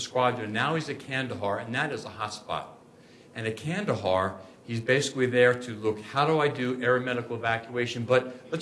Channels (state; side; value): identical; both; correlation 1.00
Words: now he's at Kandahar, and that is a hot spot. And at Kandahar, he's basically there to look, how do I do aeromedical evacuation? But